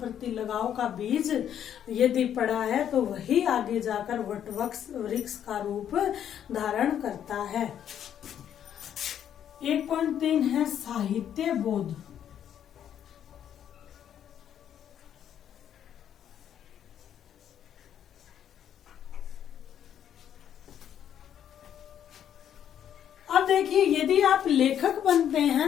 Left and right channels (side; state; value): right; quieter; 9.7 dB